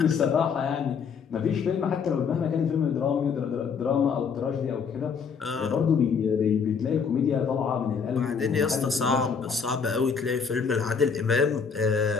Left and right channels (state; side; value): quieter; right; 6.1 dB